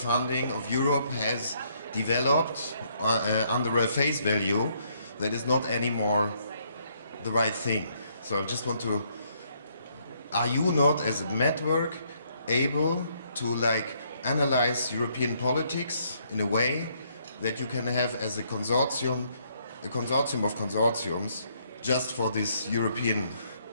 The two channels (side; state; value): both; inverted; correlation -0.70